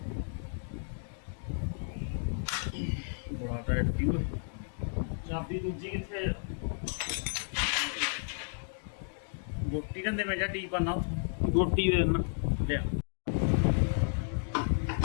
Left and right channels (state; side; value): silent; right; digital silence